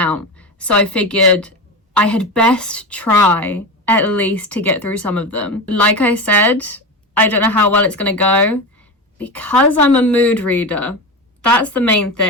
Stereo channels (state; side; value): normal; both; correlation 0.22